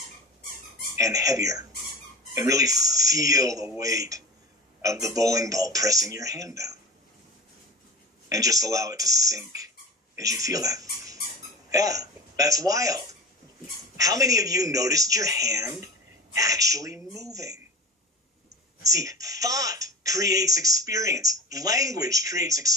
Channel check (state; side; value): normal; both; correlation 0.31